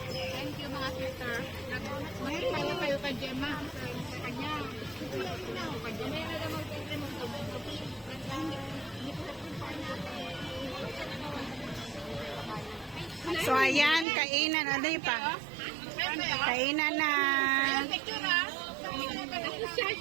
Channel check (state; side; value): drops out; left; at 14.1 s